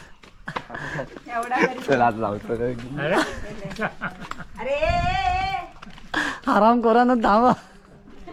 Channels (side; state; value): both; identical; correlation 1.00